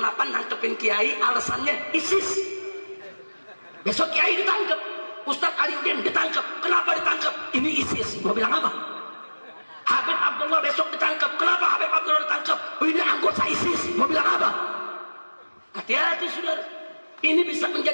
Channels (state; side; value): inverted; both; correlation -1.00